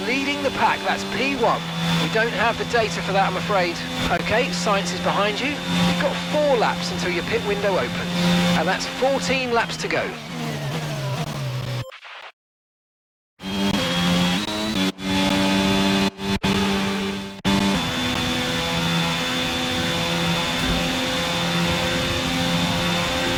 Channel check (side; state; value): both; identical; correlation 1.00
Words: leading the pack. That's P1. We don't have the data for that, I'm afraid. Okay, Science is behind you. You've got 4 laps until your pit window opens. And that's 14 laps to go.